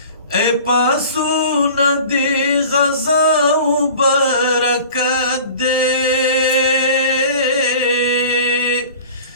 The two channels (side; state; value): both; inverted; correlation -0.42